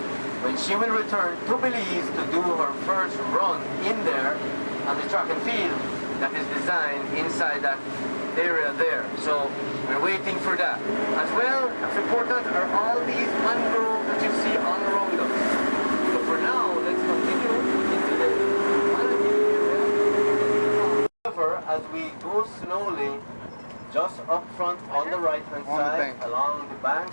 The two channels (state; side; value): inverted; both; correlation -1.00